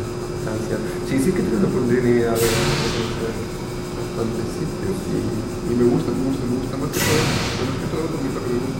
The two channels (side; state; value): both; identical; correlation 1.00